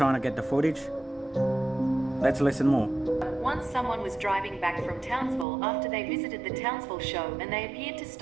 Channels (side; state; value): left; drops out; at 5.5 s